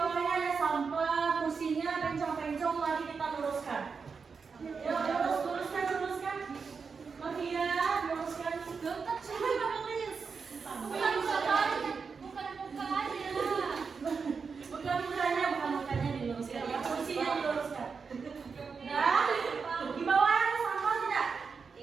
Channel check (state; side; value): quieter; left; 5.3 dB